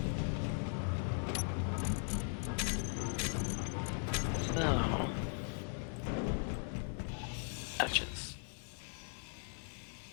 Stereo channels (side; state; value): right; silent; 52 dB below the other